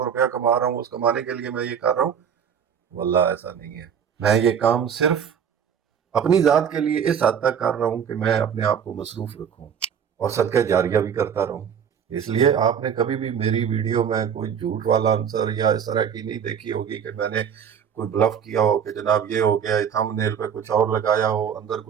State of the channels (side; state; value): left; quieter; 7.9 dB